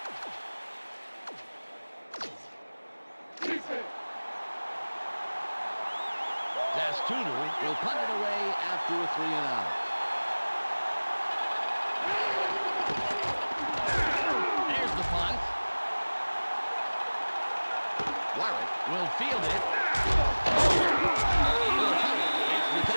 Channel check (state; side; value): inverted; both; correlation -1.00